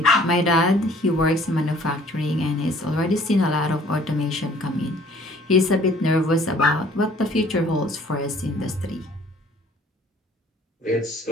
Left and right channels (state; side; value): normal; both; correlation 0.56